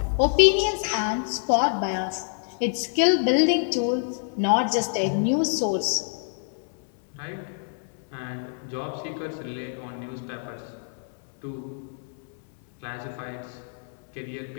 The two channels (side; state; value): right; silent; 61 dB below the other